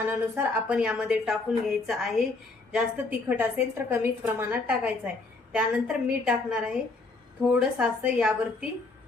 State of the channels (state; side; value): quieter; right; 3.5 dB